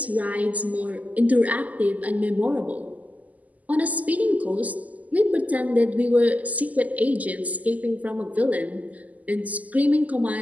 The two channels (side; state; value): left; late; 0.077 ms